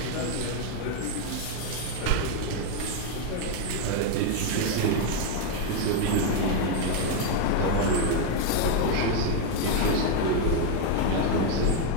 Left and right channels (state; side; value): different; both; correlation 0.01